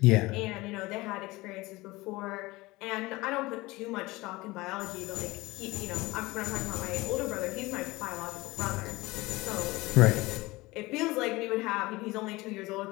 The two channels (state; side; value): quieter; right; 21.1 dB